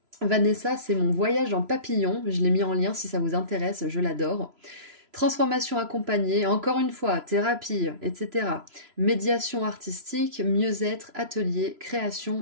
Vanessa, c'est mon voyage en papillon. Je l'ai mis en lien si ça vous intéresse, je l'adore. Transformation accompagnée, encore une fois, thérapie, etc. Médiation artistique, mieux-être, atelier,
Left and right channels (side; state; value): left; late; 3.0 ms